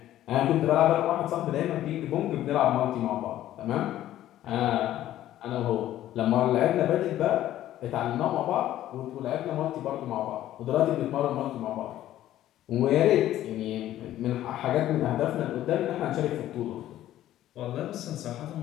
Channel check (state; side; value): quieter; right; 13.2 dB